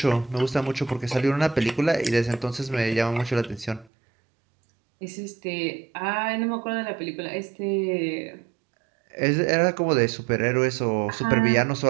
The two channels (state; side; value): drops out; left; at 3.9 s